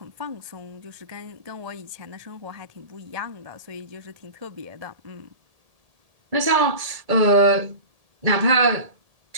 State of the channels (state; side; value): late; left; 1.8 ms